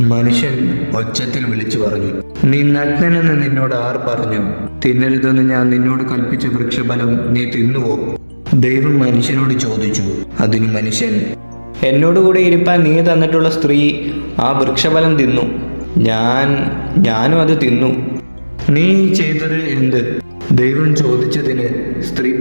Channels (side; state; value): both; inverted; correlation -1.00